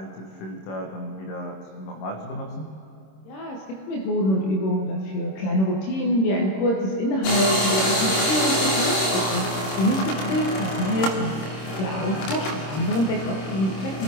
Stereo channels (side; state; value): right; late; 26 ms